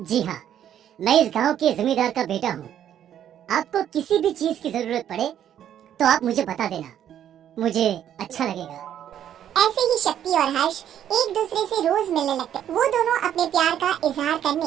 जी हाँ, मैं इस गांव के जमींदार का बेटा हूँ। आपको किसी भी चीज की जरूरत पड़े तो आप मुझे बता देना, मुझे अच्छा लगेगा। ऐसे ही शक्ति और हर्ष एक दूसरे से रोज मिलने लगते। वो दोनों अपने प्यार का इजहार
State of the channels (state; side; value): quieter; left; 10.3 dB